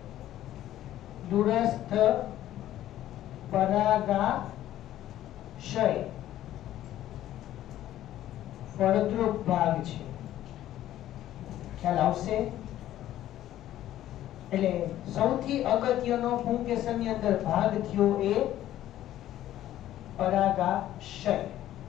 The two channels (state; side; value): quieter; right; 13.1 dB